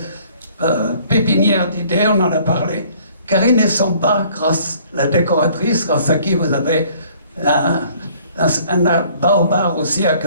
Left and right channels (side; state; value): both; inverted; correlation -0.57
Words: pépinière d'idées, on en a parlé. Karine Essamba, la décoratrice, grâce à qui vous avez un baobab aussi